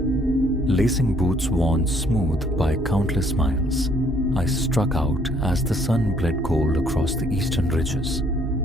Lacing boots worn smooth by countless miles, I struck out as the sun bled gold across the eastern ridges.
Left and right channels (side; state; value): both; normal; correlation 0.64